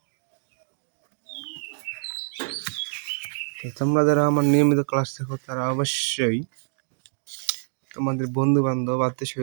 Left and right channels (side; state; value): left; silent; digital silence